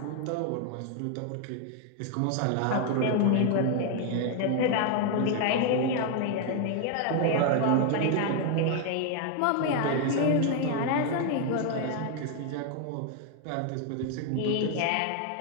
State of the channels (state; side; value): different; both; correlation 0.00